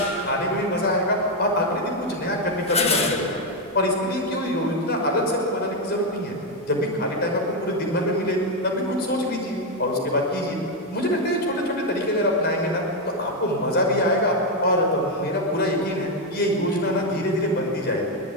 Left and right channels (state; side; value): normal; both; correlation 0.05